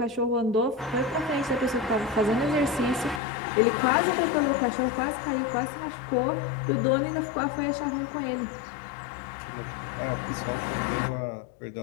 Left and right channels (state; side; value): drops out; right; at 3.2 s